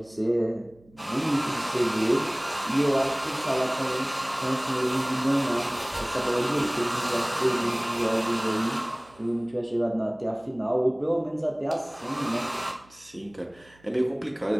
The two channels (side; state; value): right; noise; hum, 29 dB below the sound